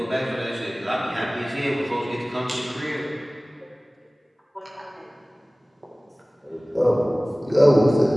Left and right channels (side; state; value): both; normal; correlation 0.98